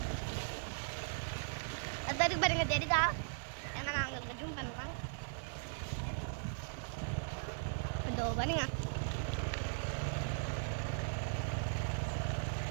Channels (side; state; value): left; silent; 52 dB below the other